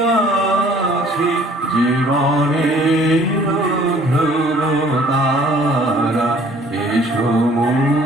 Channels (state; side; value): normal; both; correlation 0.55